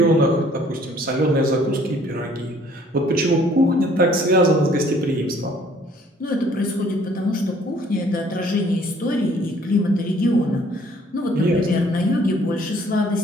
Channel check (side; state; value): both; normal; correlation 0.59